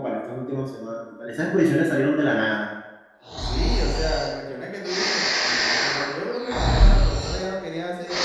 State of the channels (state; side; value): identical; both; correlation 1.00